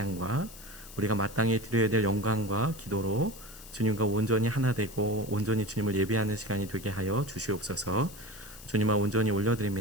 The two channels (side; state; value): left; noise; hiss, 17 dB below the sound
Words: 우리가 마땅히 드려야 될 영광과 기도로 주님과 온전히 하나 되고 온전히 주님을 예배하는 시간이 되게 하여 주시옵소서. 주님을 온전히